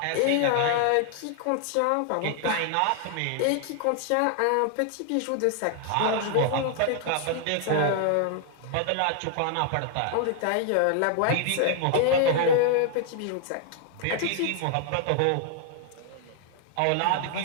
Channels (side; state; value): both; different; correlation 0.00